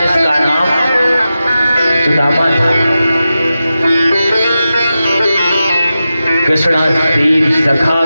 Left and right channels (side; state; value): both; inverted; correlation -0.92